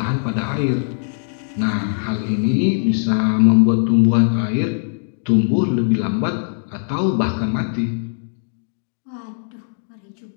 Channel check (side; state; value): right; silent; 66 dB below the other